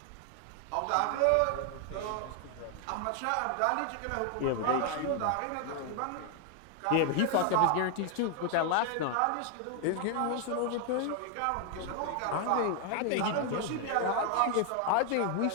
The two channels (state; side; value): different; both; correlation 0.00